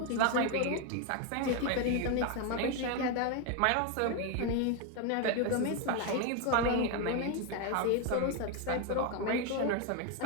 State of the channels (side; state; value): both; different; correlation 0.01